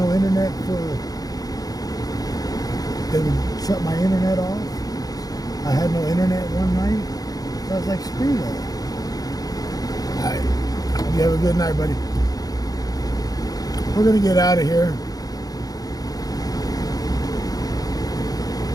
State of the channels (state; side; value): late; right; 0.18 ms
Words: internet they would shut my internet off. I had no internet one night. So I was like, screw that. All right. You have a good night, buddy. We're going to get out of here.